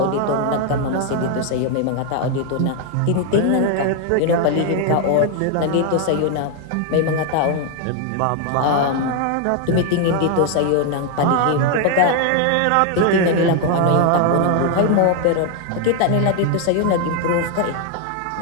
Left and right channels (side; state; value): both; different; correlation 0.00